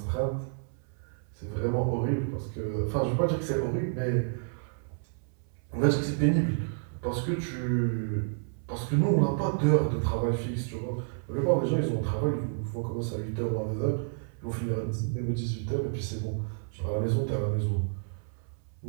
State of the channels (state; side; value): silent; left; 58 dB below the other